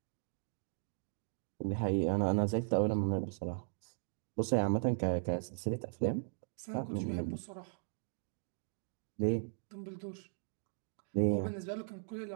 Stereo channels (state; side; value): silent; left; digital silence